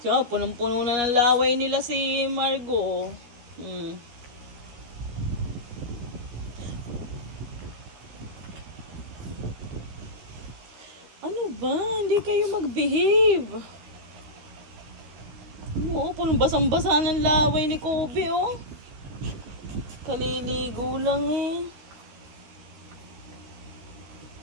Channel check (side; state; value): left; late; 13 ms